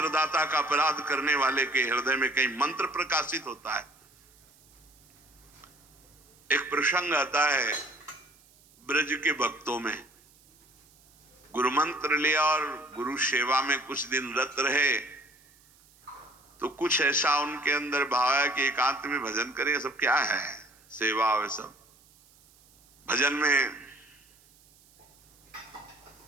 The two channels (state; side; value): noise; right; hiss, 29 dB below the sound